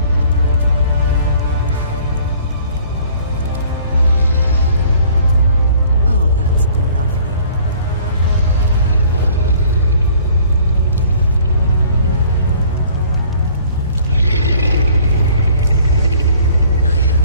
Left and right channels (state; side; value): inverted; both; correlation -0.54